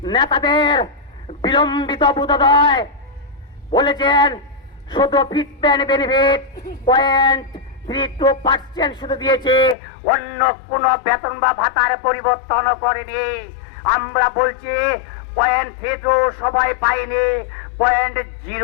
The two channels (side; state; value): right; drops out; at 9.8 s